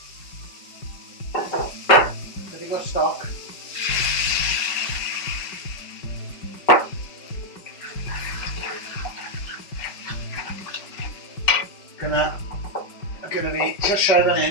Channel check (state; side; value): late; right; 5.2 ms